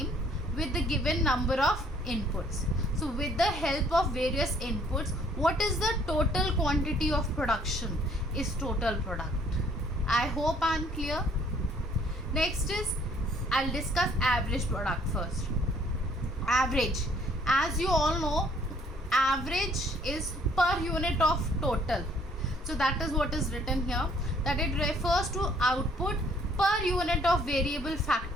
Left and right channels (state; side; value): normal; both; correlation 0.62